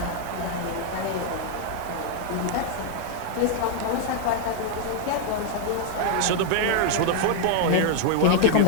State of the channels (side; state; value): both; different; correlation 0.00